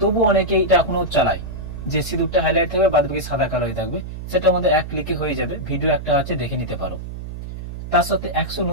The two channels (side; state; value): right; noise; hum, 9 dB below the sound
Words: তবু অনেকে এটা এখনো চালায়, যে সিঁদুরটা হাইলাইট থাকবে, বাদ বাকি সাদা কালো হয়ে থাকবে। সেটা আমাদের এক ক্লিকে হয়ে যাবে, ভিডিও একটা আছে, দেখে নিতে পারো। তার সাথে 100